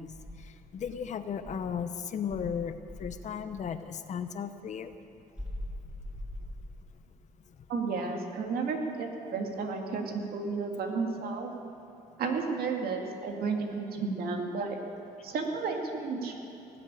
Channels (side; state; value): both; normal; correlation 0.47